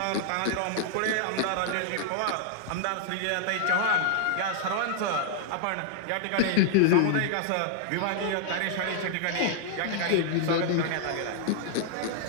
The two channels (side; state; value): both; different; correlation -0.01